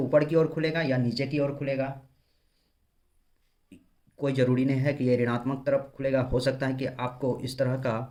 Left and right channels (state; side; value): identical; both; correlation 1.00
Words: ऊपर की ओर खुलेगा या नीचे की ओर खुलेगा, कोई ज़रूरी नहीं है कि ये ऋणात्मक तरफ खुलेगा, हो सकता है कि आपको इस तरह